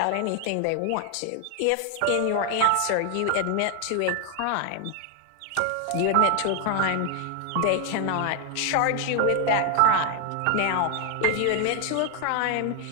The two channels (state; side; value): different; both; correlation 0.00